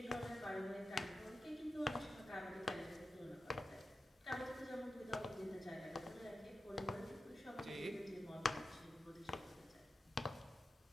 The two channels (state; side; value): normal; both; correlation 0.92